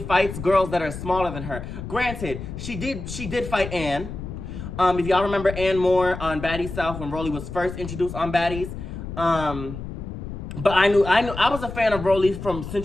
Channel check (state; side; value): noise; left; rumble, 9 dB below the sound